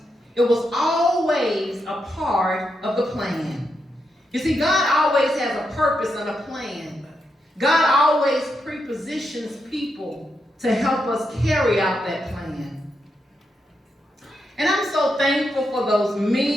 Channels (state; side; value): normal; both; correlation 0.83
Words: It was always a part of the plan. You see, God always has a purpose and a plan. God always prepositions people to help us carry out that plan. And I'm so thankful for those